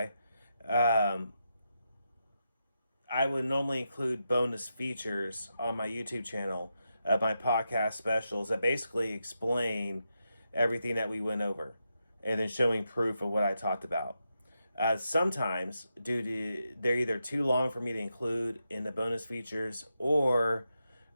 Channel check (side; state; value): both; inverted; correlation -0.86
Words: I would normally include bonus features on my YouTube channel of my podcast specials that basically explain everything that we went over and then showing proof of what I talked about. Sometimes, due to they're either too long for me to include in the bonus features, or